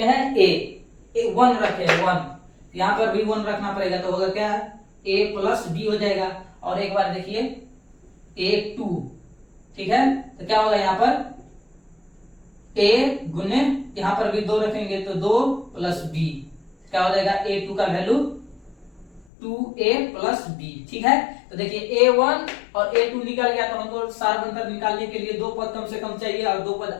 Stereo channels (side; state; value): right; drops out; at 19.2 s